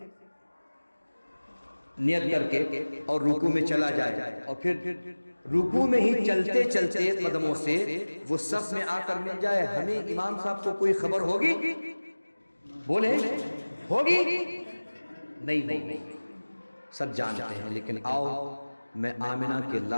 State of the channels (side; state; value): both; inverted; correlation -1.00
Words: نیت کر کے اور رکوع میں چلا جائے، اور پھر رکوع میں ہی چلتے چلتے قدموں سے وہ صف میں آ کر مل جائے، ہمیں امام صاحب کو کوئی خبر ہوگی؟ بولے ہوگی؟ نہیں، سب جانتے ہیں۔ لیکن آؤ میں آمنہ کے